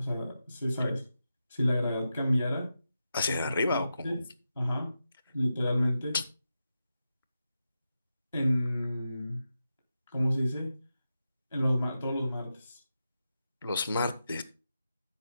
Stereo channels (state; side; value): inverted; both; correlation -0.90